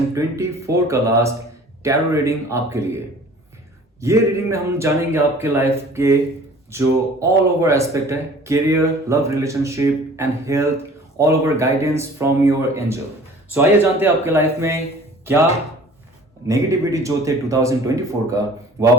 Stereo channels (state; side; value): normal; both; correlation 0.48